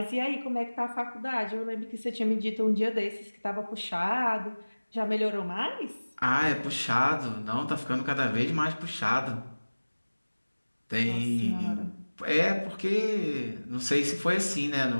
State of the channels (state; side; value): inverted; both; correlation -1.00